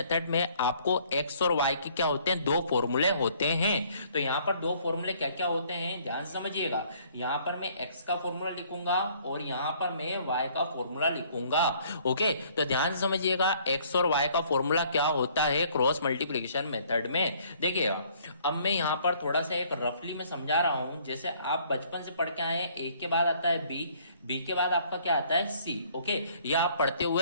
में आपको एक्स और वाई के क्या होते हैं, दो फॉर्मूले होते हैं। तो यहां पर दो फॉर्मूले क्या क्या होते हैं ध्यान से समझिएगा। यहां पर मैं एक्स का फॉर्मूला लिखूंगा और यहां पर मैं वाई का फॉर्मूला लिखूंगा। ओके, तो ध्यान से समझिएगा एक्स और वाई का फॉर्मूला क्या होता है क्रॉस मल्टीप्लिकेशन मेथड में। देखिएगा अब मैं यहां पर थोड़ा सा एक रफली में समझा रहा हूं। जैसे आप बचपन से पढ़ के आए हैं, ए के बाद आता है बी, बी के बाद आपका क्या आता है सी। ओके, ये आप पढ़ते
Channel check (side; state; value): both; inverted; correlation -0.60